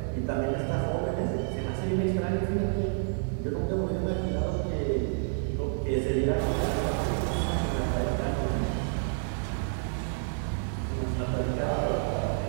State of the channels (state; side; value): silent; left; digital silence